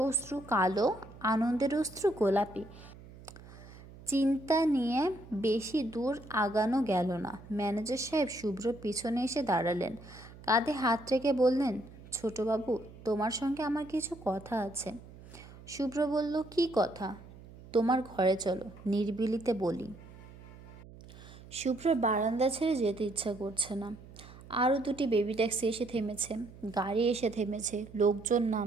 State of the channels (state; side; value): noise; right; hum, 18 dB below the sound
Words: অশ্রু কালো, আনন্দের অশ্রু গোলাপি। চিন্তা নিয়ে বেশি দূর আগানো গেল না। ম্যানেজার সাহেব শুভ্র পিছনে এসে দাঁড়ালেন, কাঁধে হাত রেখে বললেন, ছোটবাবু, তোমার সঙ্গে আমার কিছু কথা আছে। শুভ্র বলল, কি কথা? তোমার ঘরে চলো, নিরিবিলিতে বলি। শুভ্র বারান্দা ছেড়ে যেতে ইচ্ছা করছে না। আরও দুটি বেবি ট্যাক্সি এসে থেমেছে, গাড়ি এসে থেমেছে, লোকজন